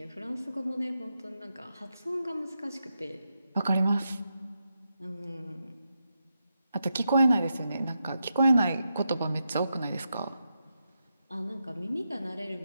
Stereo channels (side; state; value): both; inverted; correlation -0.87